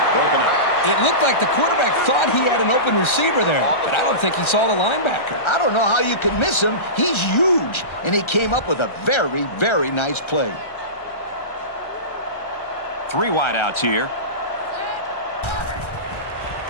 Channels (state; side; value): late; right; 1.3 ms